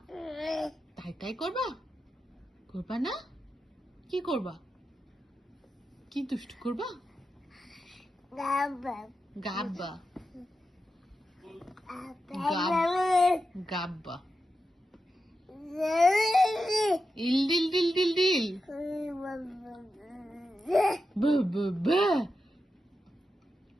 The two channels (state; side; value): normal; both; correlation 0.89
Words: তাই তাই করবা? করবা না? কি করবা? কি দুষ্টু করবা? গাব্বা গাব্বা গাব্বা ইল ডিল ডিল ডিল ডিল ব ব ব।